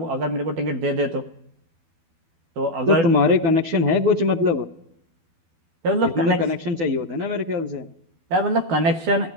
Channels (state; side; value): late; left; 12 ms